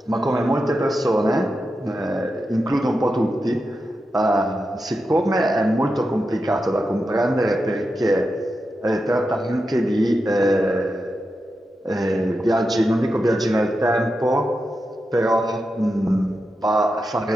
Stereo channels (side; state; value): both; normal; correlation 0.89